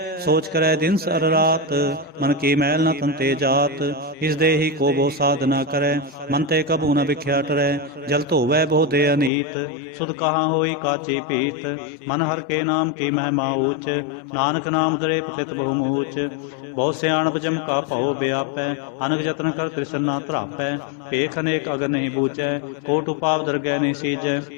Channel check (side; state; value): right; drops out; at 9.3 s